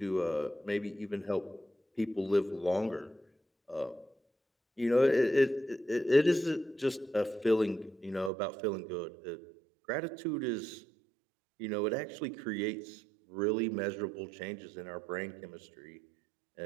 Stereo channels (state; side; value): drops out; left; at 8.3 s